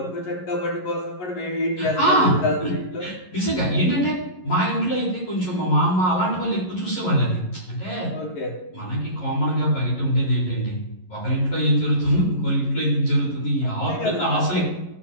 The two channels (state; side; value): late; right; 11 ms